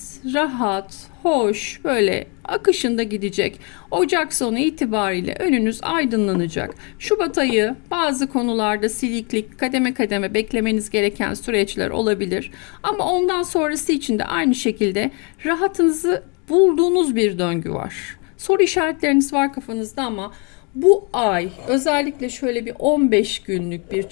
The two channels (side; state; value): right; quieter; 34.2 dB